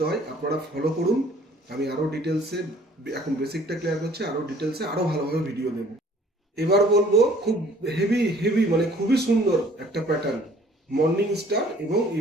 হয়, আপনারা ফলো করুন। আমি আরো ডিটেলসে এখন বেসিকটা ক্লিয়ার করছি, আরো ডিটেলসে আরো ভালোভাবে ভিডিও দেব। এবার বলবো খুব হেভি মানে খুবই সুন্দর একটা প্যাটার্ন, মর্নিং স্টার এবং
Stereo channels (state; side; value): normal; both; correlation 0.55